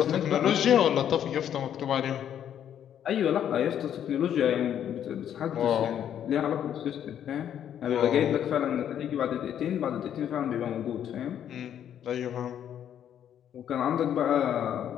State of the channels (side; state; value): right; quieter; 9.8 dB